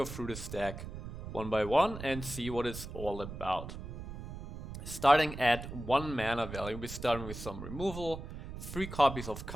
through this deck one by one and see what it's all about. Starting at 1 mana value, we're starting with some removal, 3 copies of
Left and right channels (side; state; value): right; noise; rumble, 9 dB below the sound